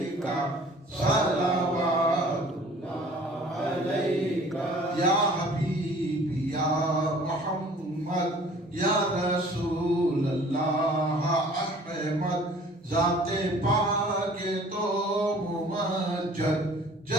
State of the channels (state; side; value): normal; both; correlation 0.50